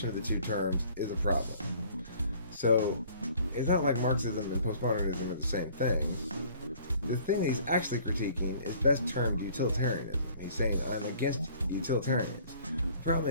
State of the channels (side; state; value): both; inverted; correlation -0.54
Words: of the two terms is a problem. So it's not like Marxism and postmodernism are the same thing. The thing that he's actually critiquing is best termed utilitarianism. He's saying, I'm against utilitarians. The problem